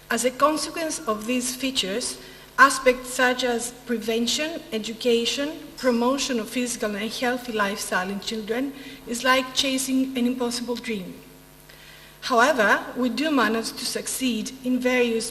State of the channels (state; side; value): identical; both; correlation 1.00